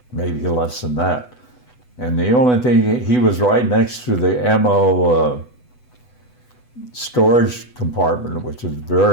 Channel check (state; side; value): late; right; 8.0 ms